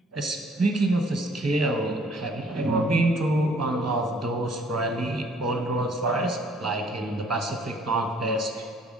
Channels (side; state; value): both; normal; correlation 0.59